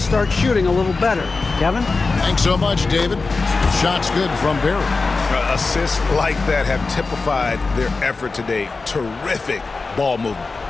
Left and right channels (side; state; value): right; quieter; 4.0 dB